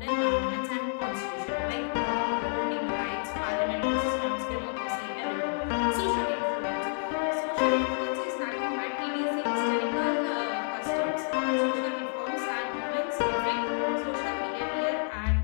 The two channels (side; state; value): right; silent; 58 dB below the other